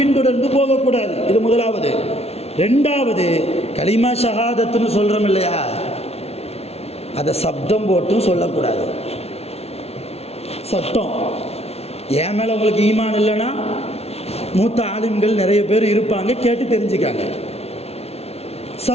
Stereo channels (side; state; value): right; late; 0.30 ms